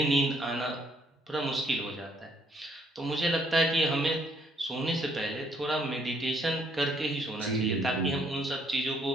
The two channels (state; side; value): normal; both; correlation 0.68